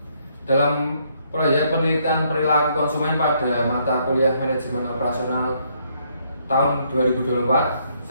Dalam proyek penelitian perilaku konsumen pada mata kuliah manajemen operasional tahun 2024,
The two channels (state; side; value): inverted; both; correlation -0.71